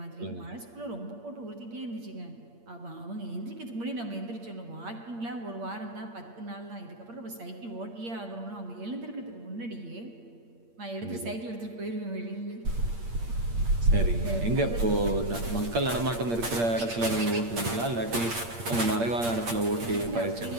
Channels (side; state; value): left; late; 8.6 ms